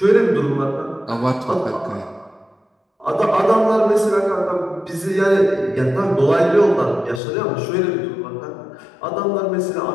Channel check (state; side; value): drops out; right; at 7.2 s